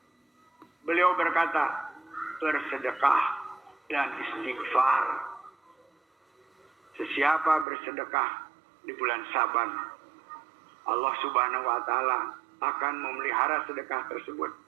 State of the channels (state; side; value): drops out; left; at 7.7 s